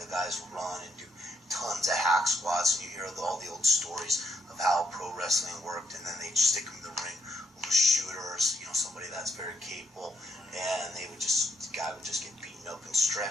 guys run and do tons of hack squats, and you hear all the old stories of how pro wrestling worked, and then they'd stick them in the ring with a shooter or somebody that's very capable, and the guy would just get beaten up and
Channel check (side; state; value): both; normal; correlation 0.75